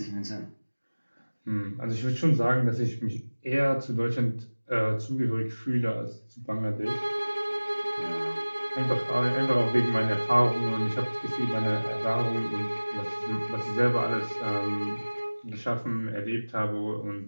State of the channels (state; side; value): inverted; both; correlation -1.00